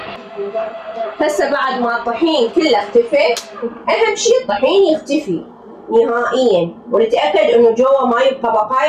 هسه بعد ما الطحين كله اختفى، أهم شي الطحين يختفي نهائيا ونتأكد إنه جوا ما يبقى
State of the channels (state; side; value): identical; both; correlation 1.00